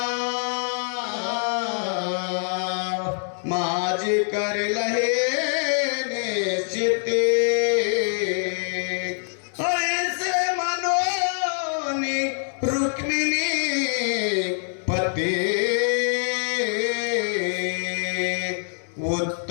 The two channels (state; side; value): silent; right; 61 dB below the other